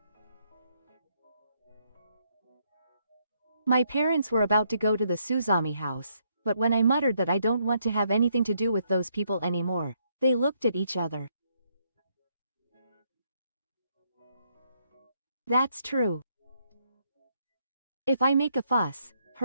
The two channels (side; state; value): both; inverted; correlation -0.73